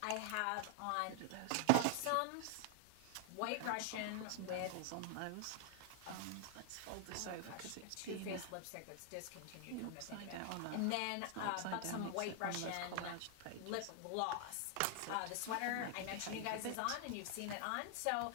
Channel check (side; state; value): both; different; correlation 0.00